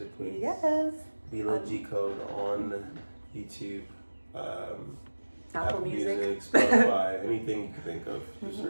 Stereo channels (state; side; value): inverted; both; correlation -1.00